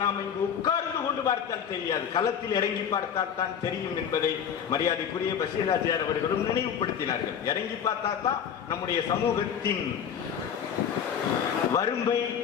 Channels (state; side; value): quieter; right; 8.1 dB